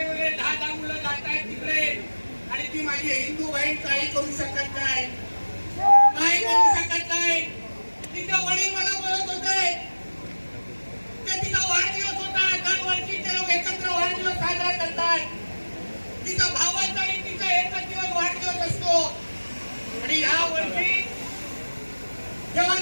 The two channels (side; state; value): both; inverted; correlation -1.00